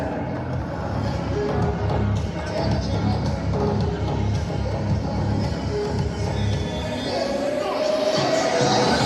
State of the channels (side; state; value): both; identical; correlation 1.00